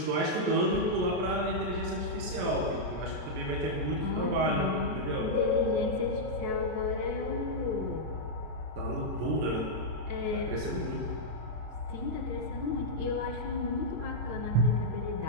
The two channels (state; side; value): late; left; 33 ms